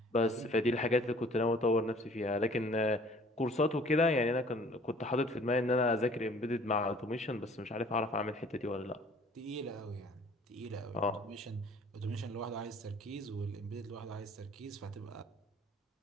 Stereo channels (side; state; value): both; normal; correlation 0.54